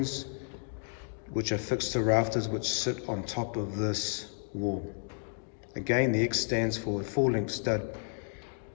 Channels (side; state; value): right; silent; 56 dB below the other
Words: which are fixed to rafters which sit on top of this wall. Again, the X stands for full-length stud,